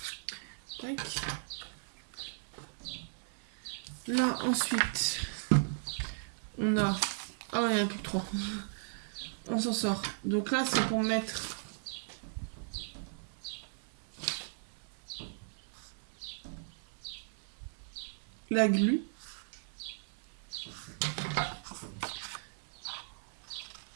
Tac. Là, ensuite, on a... Ah ouais, il n'y en a plus que 3. On s'en sort. Donc là, c'est pour mettre... la glu.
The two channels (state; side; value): silent; left; 53 dB below the other